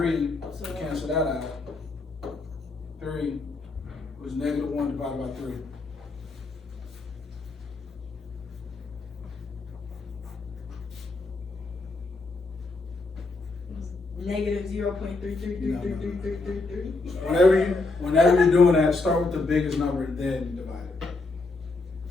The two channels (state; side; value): quieter; right; 3.4 dB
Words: So to cancel that out. 3 was -1 divided by 3. -0.33333333. Whenever you're doing that, start with the biggest number and then divide it.